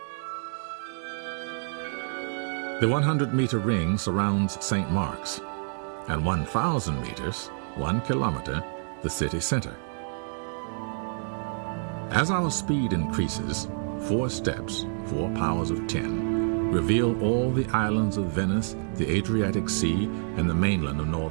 The 100-meter ring surrounds St. Mark's, and 1,000 meters, 1 kilometer, the city center. As our speed increases, 4 steps, 4 powers of 10, reveal all the islands of Venice, the Adriatic Sea, and the mainland of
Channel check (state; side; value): silent; left; 60 dB below the other